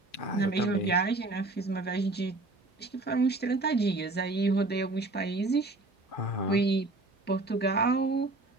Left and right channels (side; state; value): left; quieter; 3.0 dB